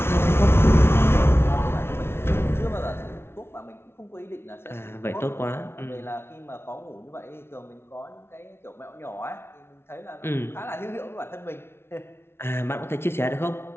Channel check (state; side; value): late; right; 0.12 ms